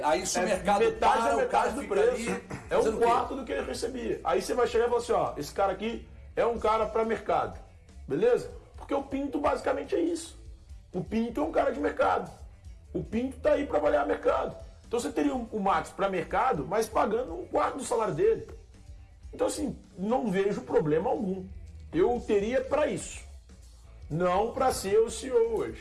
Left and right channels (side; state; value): both; identical; correlation 1.00